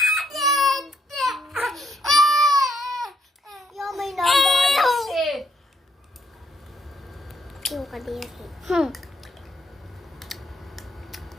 Yo, may nagay. Yung kadiri.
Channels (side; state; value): both; normal; correlation 0.73